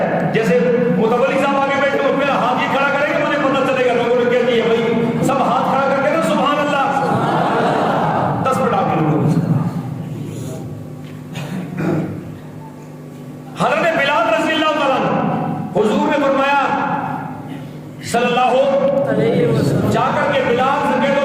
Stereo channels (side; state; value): both; identical; correlation 1.00